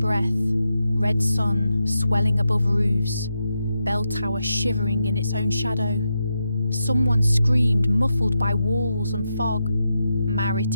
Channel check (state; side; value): inverted; both; correlation -0.87